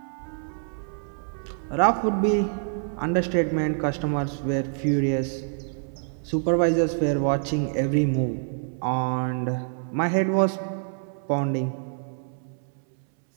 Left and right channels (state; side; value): silent; left; 61 dB below the other